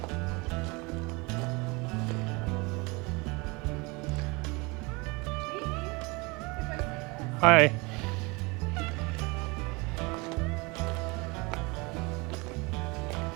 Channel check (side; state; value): left; quieter; 26.7 dB